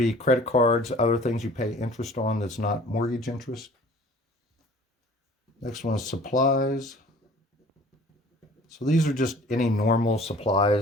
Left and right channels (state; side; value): normal; both; correlation 0.49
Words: credit cards, other things you pay interest on that's not mortgage interest. Next one is supplies. So these are just any normal